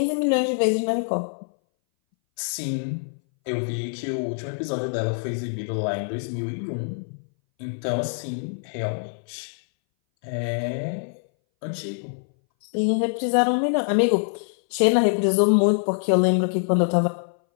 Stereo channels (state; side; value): silent; right; 60 dB below the other